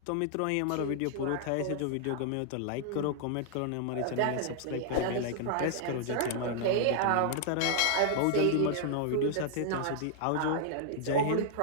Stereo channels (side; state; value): both; different; correlation -0.01